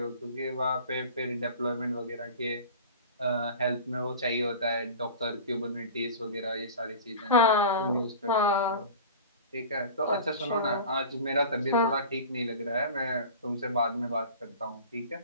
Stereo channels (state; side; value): inverted; both; correlation -0.37